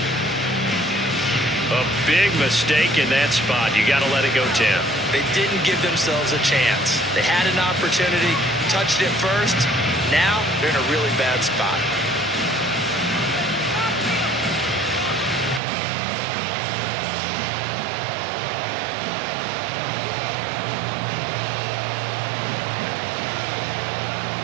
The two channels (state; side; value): drops out; left; at 15.6 s